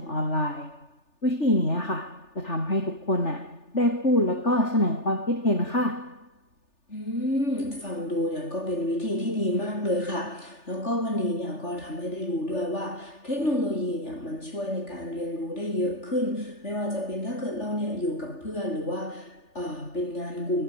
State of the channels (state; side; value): late; right; 3.4 ms